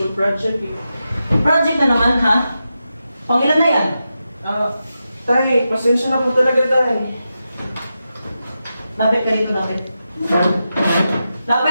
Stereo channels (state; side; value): inverted; both; correlation -0.89